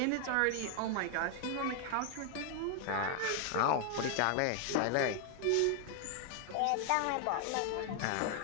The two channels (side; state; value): both; different; correlation 0.00